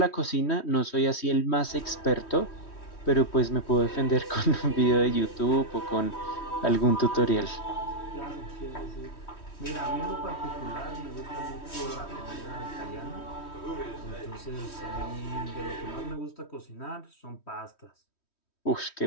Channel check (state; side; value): late; right; 3.1 ms